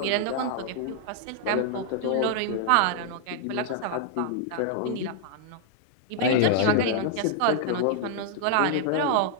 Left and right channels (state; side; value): different; both; correlation -0.01